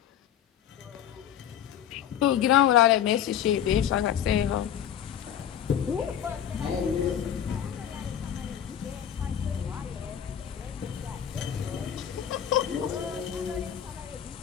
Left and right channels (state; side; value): quieter; right; 9.8 dB